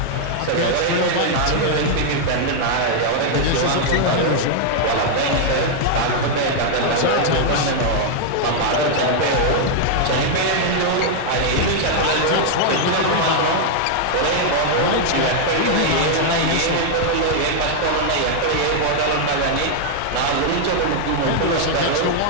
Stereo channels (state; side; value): different; both; correlation 0.00